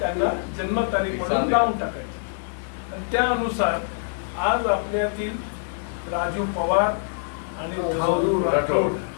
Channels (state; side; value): silent; right; 62 dB below the other